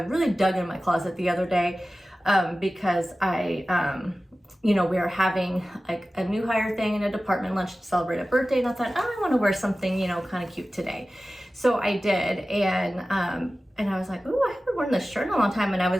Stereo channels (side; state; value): both; normal; correlation 0.96